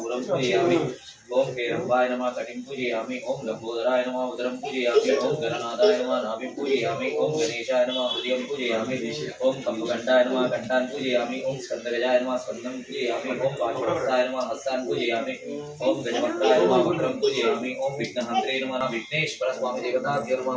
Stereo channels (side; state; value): both; identical; correlation 1.00